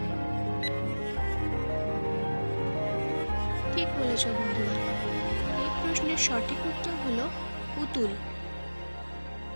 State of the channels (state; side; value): inverted; both; correlation -1.00